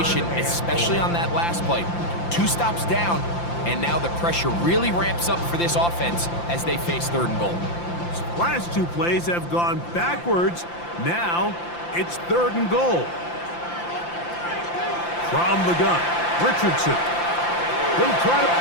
especially on that last play. 2 stops down, and now the pressure really ramps up for this offense as they face 3rd and goal. Last 2 plays have gone backwards. Now it's 3rd and goal. From the gun, Richardson. He'll try to...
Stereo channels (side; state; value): right; late; 5.8 ms